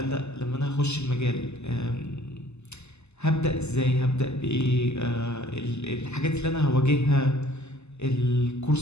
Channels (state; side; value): late; right; 0.81 ms